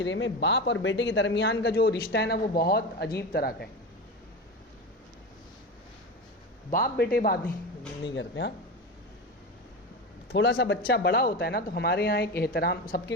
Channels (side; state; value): both; normal; correlation 0.23